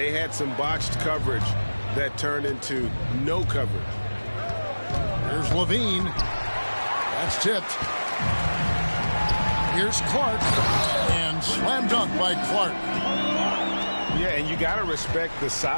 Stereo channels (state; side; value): inverted; both; correlation -1.00